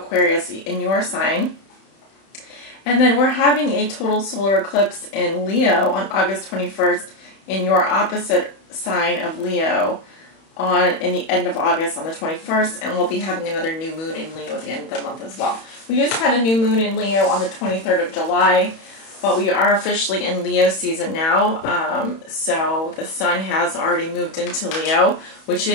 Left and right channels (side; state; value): right; late; 31 ms